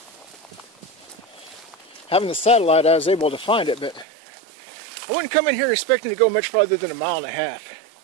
having the satellite, I was able to find it, but I wouldn't come in here expecting to go much farther than 1.5 miles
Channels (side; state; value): left; drops out; at 4.0 s